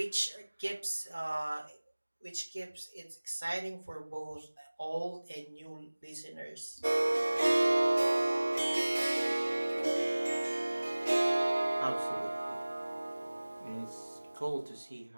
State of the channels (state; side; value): inverted; both; correlation -1.00